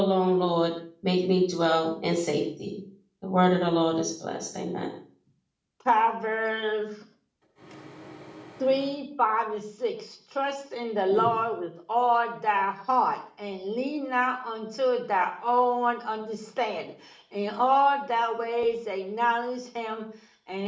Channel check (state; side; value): identical; both; correlation 1.00